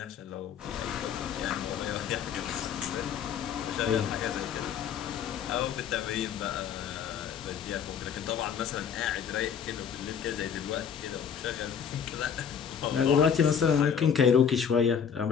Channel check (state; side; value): quieter; right; 7.6 dB